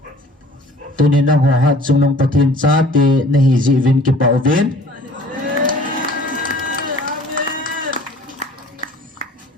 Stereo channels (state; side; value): normal; both; correlation 0.50